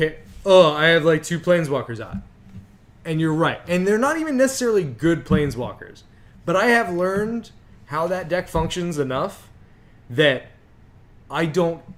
I have like 2 Planeswalkers out. And you're right. And they're not even necessarily good Planeswalkers. But I have learned how that deck functions enough that I don't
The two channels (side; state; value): both; identical; correlation 1.00